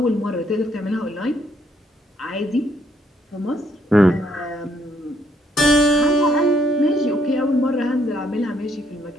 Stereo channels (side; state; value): both; normal; correlation 0.71